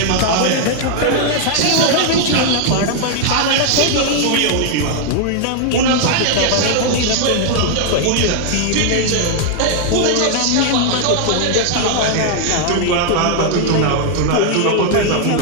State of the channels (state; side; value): different; both; correlation 0.00